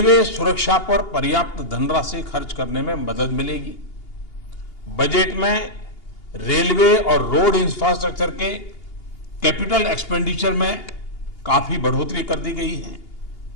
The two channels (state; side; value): late; right; 2.8 ms